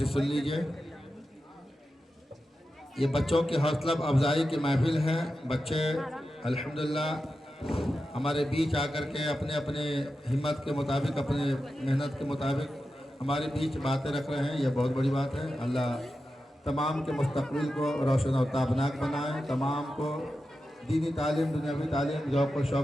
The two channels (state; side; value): normal; both; correlation 0.91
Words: سن لیجئے. یہ بچوں کی حوصلہ افزائی کی محفل ہے. بچے الحمدللہ ہمارے بیچ آ کر کے اپنے اپنے ہمت کے مطابق اپنے محنت کے مطابق ہمارے بیچ باتیں رکھ رہے ہیں. یہ بہت بڑی بات ہے. اللہ تمام کے مستقبل کو روشن و تابناک بنائے. تمام کو دینی تعلیم دنیاوی تعلیم ذوق و